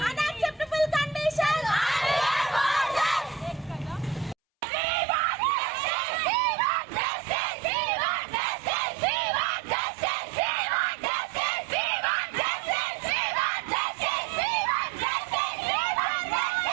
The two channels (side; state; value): left; drops out; at 4.4 s